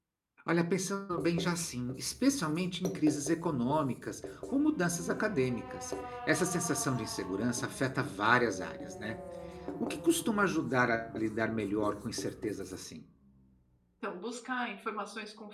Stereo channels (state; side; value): identical; both; correlation 1.00